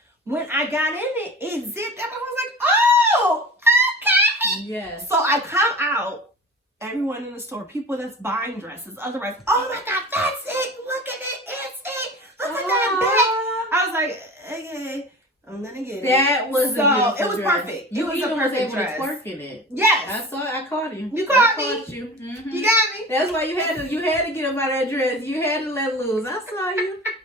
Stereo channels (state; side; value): normal; both; correlation 0.36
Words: When I got in it, it zipped up. I was like, oh, okay. Yes. So I come out, everyone in the store, people that's buying dresses, otherwise, oh my God, that's it. Look at it. It's it. Look at that back. I was like, okay. I'm gonna get it. That was a it was dress. perfect. You even was able dress. to twerk in it. Yes, I caught you. You caught me. You. Mm-hmm. You got me. That's why you had to get up out of that dress. You had to let loose. I saw you.